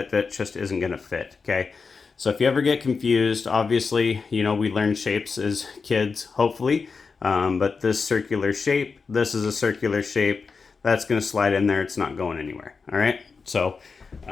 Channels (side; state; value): right; quieter; 4.9 dB